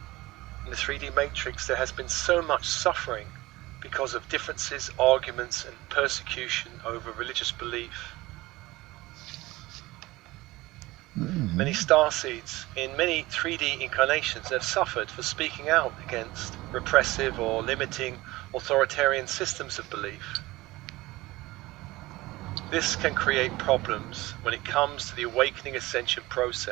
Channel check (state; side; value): quieter; left; 19.4 dB